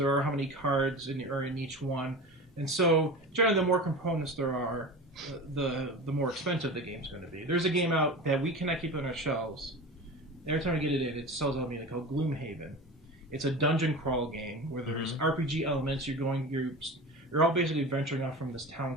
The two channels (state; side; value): normal; both; correlation 0.31